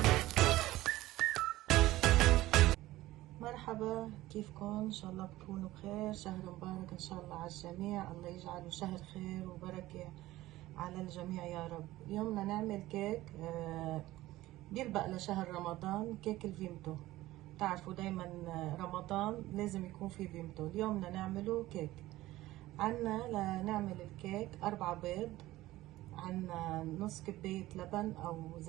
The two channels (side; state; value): left; quieter; 16.8 dB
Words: مرحبا، كيفكم؟ ان شاء الله بتكونوا بخير. شهر مبارك ان شاء الله على الجميع، الله يجعله شهر خير وبركة على الجميع يا رب. اليوم بدنا نعمل كيك بيلبق لشهر رمضان، كيك الفيمتو. تعرفوا دايما رمضان لازم يكون في فيمتو. اليوم بدنا نعمله كيك. عنا لنعمل الكيك 4 بيض، عنا نص كوباية لبن او